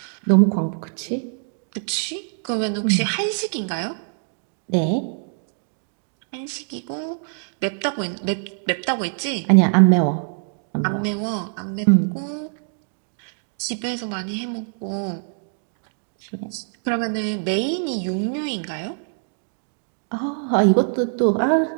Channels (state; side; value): silent; left; digital silence